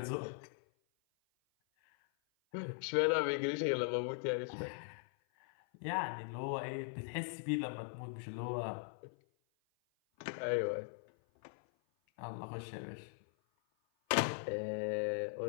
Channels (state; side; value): silent; right; 51 dB below the other